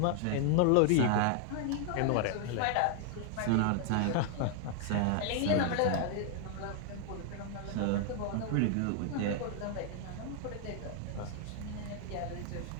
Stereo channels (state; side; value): different; both; correlation 0.00